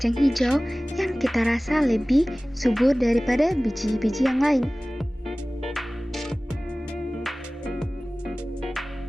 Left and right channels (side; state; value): both; normal; correlation 0.98